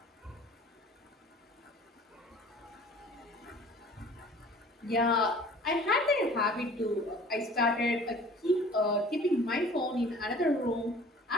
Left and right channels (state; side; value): normal; both; correlation 0.48